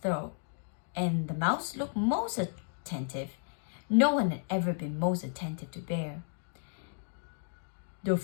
and the mouse looked most attentive. No one had ever been most attentive to Bear. The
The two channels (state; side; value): silent; right; digital silence